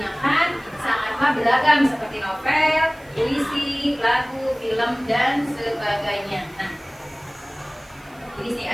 sangatlah beragam seperti novel, puisi, lagu, film, dan sebagainya. Nah, ini sih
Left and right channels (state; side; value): noise; right; hiss, 28 dB below the sound